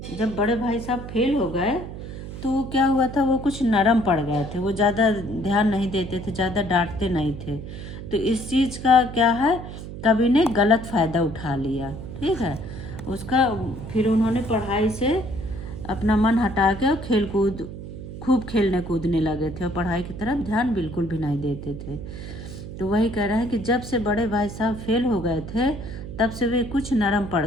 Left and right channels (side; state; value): right; noise; hum, 10 dB below the sound